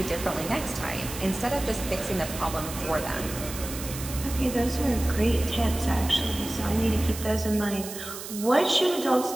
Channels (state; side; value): noise; right; hiss, 10 dB below the sound